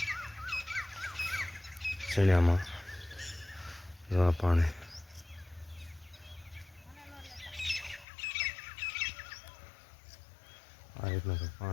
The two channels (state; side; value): drops out; right; at 8.1 s